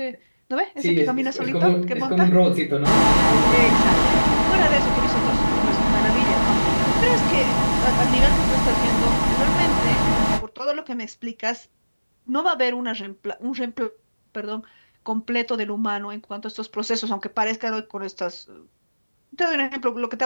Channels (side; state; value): both; inverted; correlation -1.00